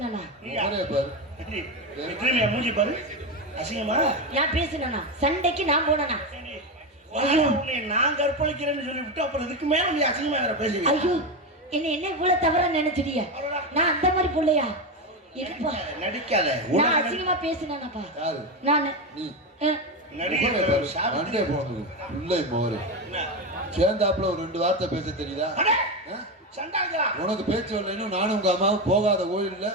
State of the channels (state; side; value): normal; both; correlation 0.14